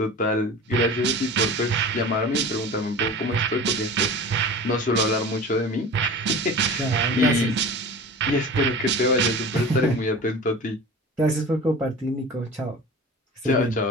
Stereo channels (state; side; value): normal; both; correlation 0.36